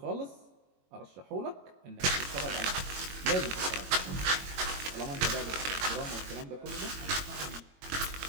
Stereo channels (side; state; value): left; late; 22 ms